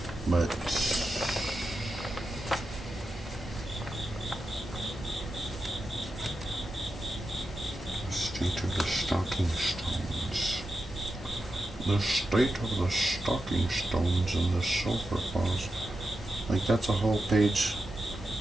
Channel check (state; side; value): normal; both; correlation 0.89